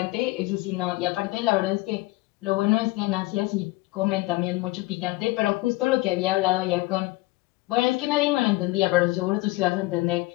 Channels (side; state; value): right; quieter; 20.9 dB